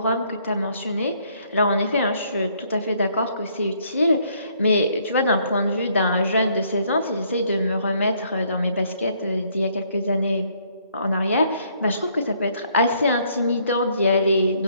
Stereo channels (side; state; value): both; inverted; correlation -0.67